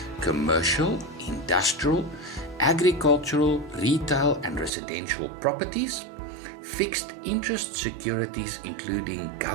commercial, industrial, agricultural, retail and residential properties, fixed interest securities including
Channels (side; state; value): left; drops out; at 4.7 s